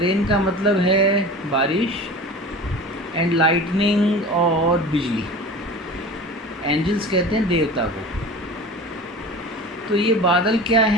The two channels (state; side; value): normal; both; correlation 0.35